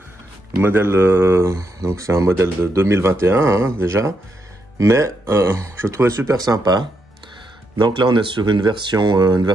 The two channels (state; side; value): normal; both; correlation 0.80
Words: modèle, donc c'est un modèle de 2021 hein, déjà, mais je trouvais super sympa. Donc là on est sur une